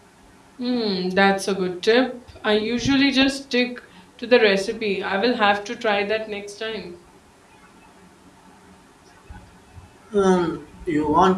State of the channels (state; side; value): identical; both; correlation 1.00